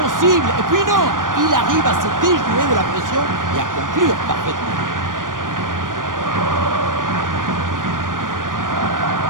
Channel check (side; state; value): left; late; 0.90 ms